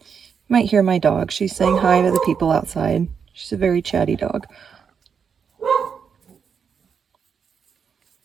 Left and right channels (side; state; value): left; quieter; 6.6 dB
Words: You might hear my dog. She's saying hi to the people outside. She's a very chatty dog.